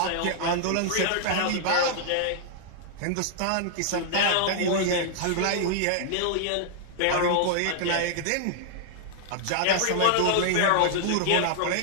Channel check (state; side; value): different; both; correlation -0.01